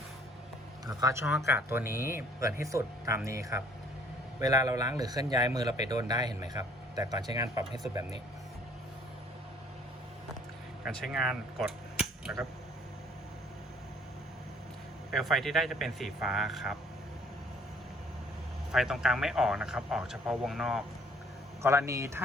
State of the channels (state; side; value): normal; both; correlation 0.58